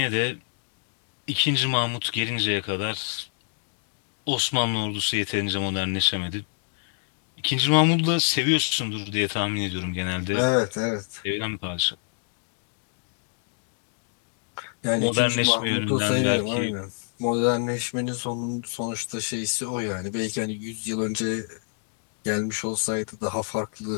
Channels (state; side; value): silent; right; 60 dB below the other